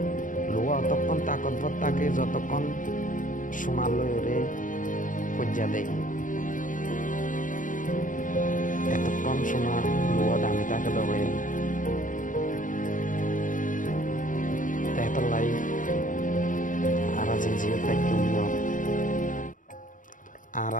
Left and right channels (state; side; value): late; right; 0.38 ms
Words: লোয়া অতক্ষণ তাকতভর তাকে যতক্ষণ সোনার লয়রে পর্যা দেয় এতক্ষণ সোনা লোয়া দামি তাকে দেবে। তাইতার লাই আর যে জিও তাই তুমিও আর